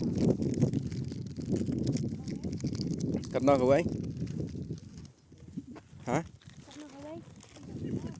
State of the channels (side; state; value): both; identical; correlation 1.00